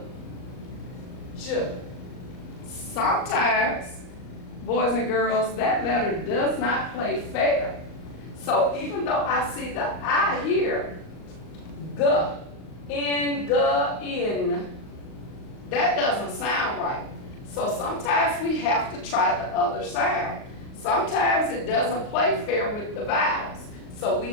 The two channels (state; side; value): late; right; 38 ms